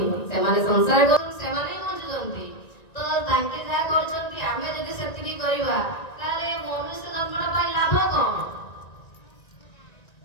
से माने संसार कर से माने बंचुछंती तो तांके जा करछंती आमे जदि सेतिकी करिबा ताले मनुष्य जन्मटा पाई लाभ कोन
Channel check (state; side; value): late; right; 1.9 ms